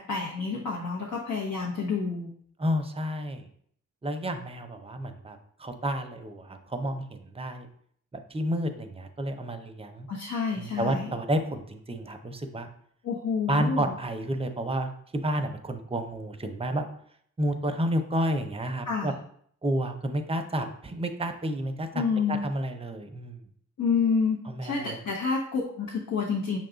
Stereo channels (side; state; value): both; normal; correlation 0.55